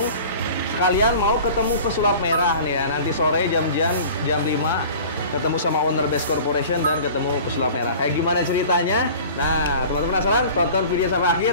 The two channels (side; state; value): both; inverted; correlation -0.42